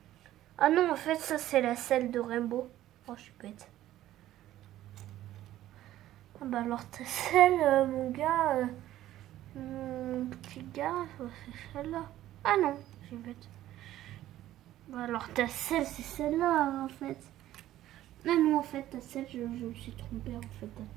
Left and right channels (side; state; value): left; quieter; 13.8 dB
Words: Ah non, en fait, ça, c'est la selle de Rainbow. Oh, je suis bête. Ah bah alors, ta selle, mon gars, mon petit gars, c'est celle-là. Ah non, je suis bête. Bah alors, ta selle, c'est celle-là, en fait. Ah non, en fait, ta selle, je me suis trompée, en fait,